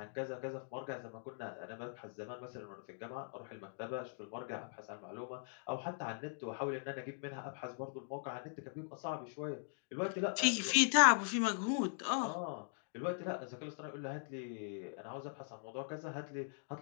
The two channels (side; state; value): right; silent; digital silence